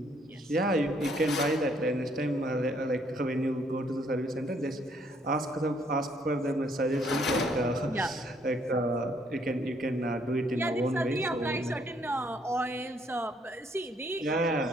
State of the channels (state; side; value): normal; both; correlation 0.67